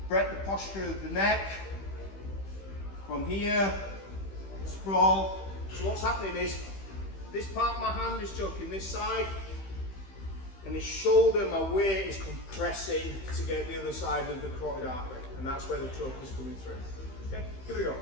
break the posture of the neck. From here, sprawl. So what's happening is, this part of my hand is choking this side, and this shoulder, my weight is compressing to get the other side of the carotid artery, and that's where the choke is coming through. Okay, here we go.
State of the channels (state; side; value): late; right; 15 ms